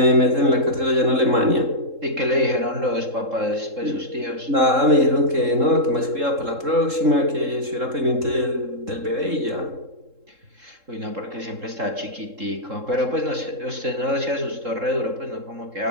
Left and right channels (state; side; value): late; left; 3.7 ms